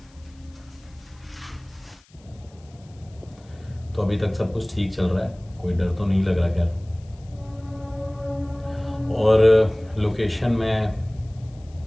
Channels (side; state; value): left; noise; hiss, 30 dB below the sound